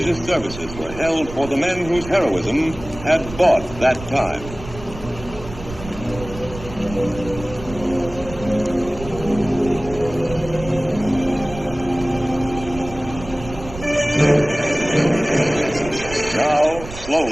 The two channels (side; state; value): right; noise; rumble, 13 dB below the sound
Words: services were held for the men whose heroism had bought that time. Now,